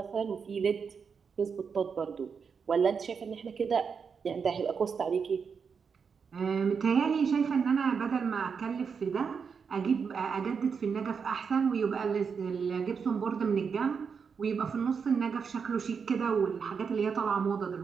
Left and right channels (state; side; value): quieter; left; 6.0 dB